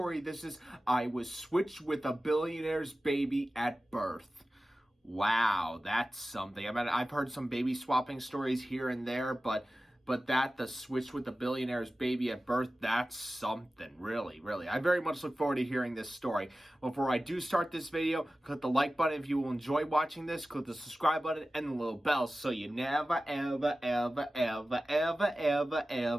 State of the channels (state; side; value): normal; both; correlation 0.95